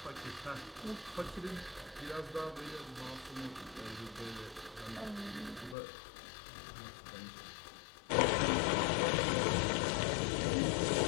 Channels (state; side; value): drops out; right; at 5.8 s